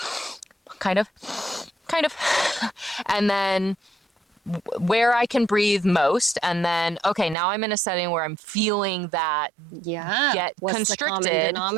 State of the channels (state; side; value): drops out; left; at 7.4 s